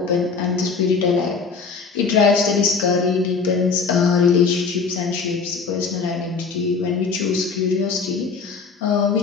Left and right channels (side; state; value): right; quieter; 5.0 dB